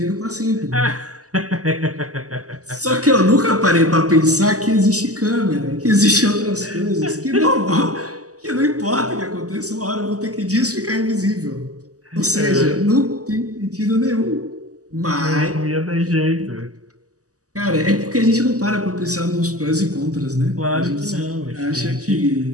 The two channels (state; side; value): late; left; 0.66 ms